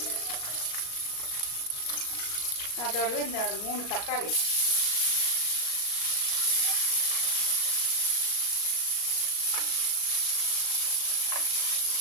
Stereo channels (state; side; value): late; right; 36 ms